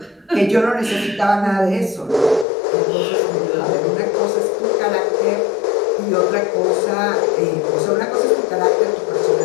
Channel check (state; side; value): drops out; right; at 2.5 s